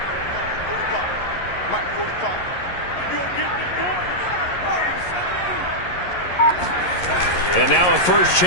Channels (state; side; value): late; right; 11 ms